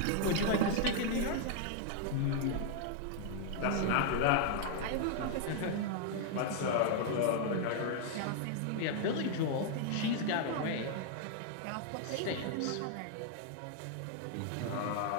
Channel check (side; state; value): both; different; correlation 0.00